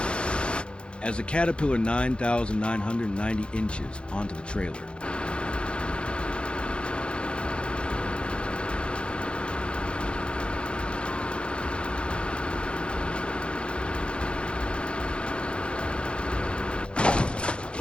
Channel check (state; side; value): late; right; 0.056 ms